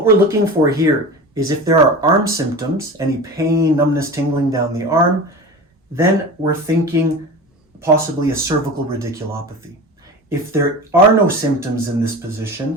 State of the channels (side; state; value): both; normal; correlation 0.31